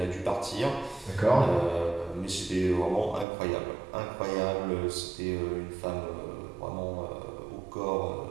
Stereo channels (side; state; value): left; drops out; at 3.2 s